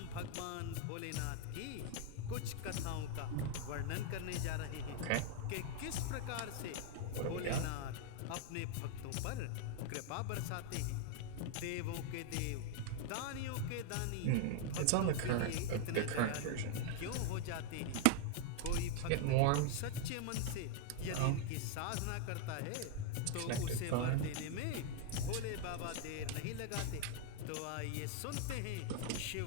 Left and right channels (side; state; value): both; different; correlation 0.00